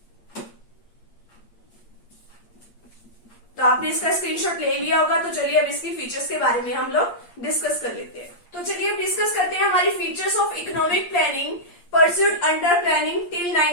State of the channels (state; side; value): late; right; 8.5 ms